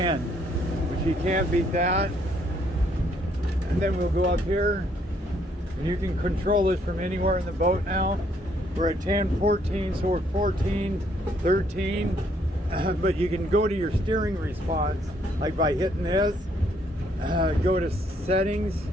which you can't beat that. And then we'll go up here, and you can control this from anywhere in the boat now. We're at 10, 14, so we're 14, 13, but you can go to your steering response, like by hitting this, go to settings,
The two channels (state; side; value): normal; both; correlation 0.69